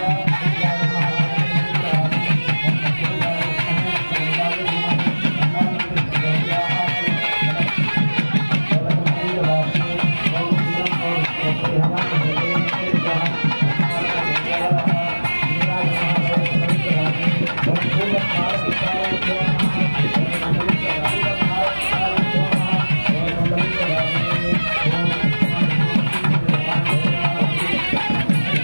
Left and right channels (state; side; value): inverted; both; correlation -1.00